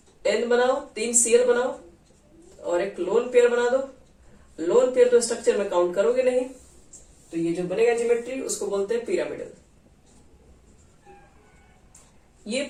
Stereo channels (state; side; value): identical; both; correlation 1.00